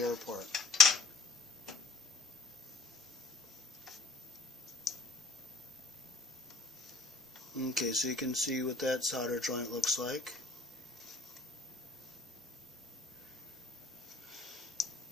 Okay, so you can see what that solder joint looks like.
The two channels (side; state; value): right; quieter; 3.7 dB